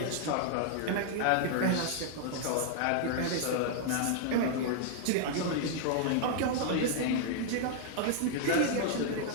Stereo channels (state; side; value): different; both; correlation -0.01